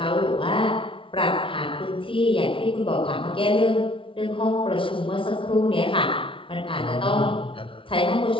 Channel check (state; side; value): late; right; 0.25 ms